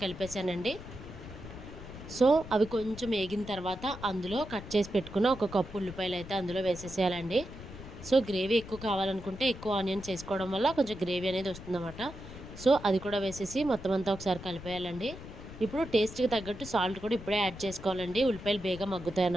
కలిపేశానండి. సో అవి కొంచెం వేగిన తర్వాత అందులో కట్ చేసి పెట్టుకున్న ఒక కప్పు ఉల్లిపాయలు అయితే అందులో వేసేసేయాలండి. సో గ్రేవీ ఎక్కువ కావాలనుకుంటే ఎక్కువ ఆనియన్స్ వేసుకోవడం వల్ల కొంచెం గ్రేవీ అనేది వస్తుందన్నమాట. సో అది కూడా వేసేసి మొత్తం అంతా ఒకసారి కలిపేయాలండి. ఇప్పుడు టేస్ట్కి తగ్గట్టు సాల్ట్ కూడా ఇప్పుడే యాడ్ చేసుకోవాలండి. ఉల్లిపాయలు బేగా మగ్గుతాయి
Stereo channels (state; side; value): noise; left; rumble, 13 dB below the sound